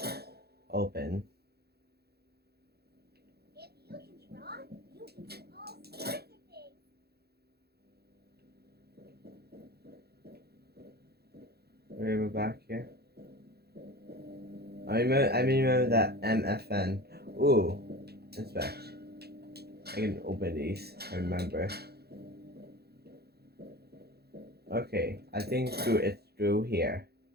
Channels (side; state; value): left; late; 0.46 ms